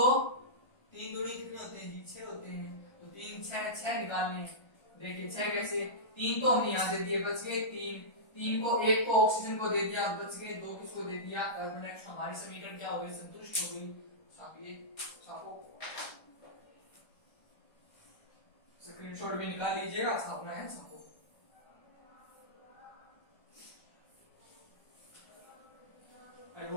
दूनी कितने होते हैं जी? 6 होते हैं। तो 3 6 निकालने हैं। देखिए 6 कैसे? 3 तो हमने यहाँ दे दिए, बच गए 3 को, 1 को ऑक्सीजन को दे दिया, बच गए 2 किसको दे दिया? Carbon dioxide. हमारी समीकरण क्या हो गई? संतुष्ट हो गई। छापिए, छापो, स्क्रीनशॉट भी निकाल लीजिएगा, छापना है, छापो। आई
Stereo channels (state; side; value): late; right; 1.3 ms